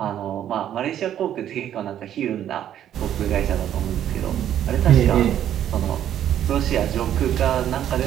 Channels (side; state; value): left; quieter; 10.8 dB